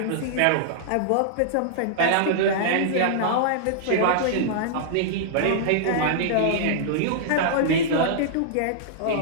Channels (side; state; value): both; different; correlation -0.02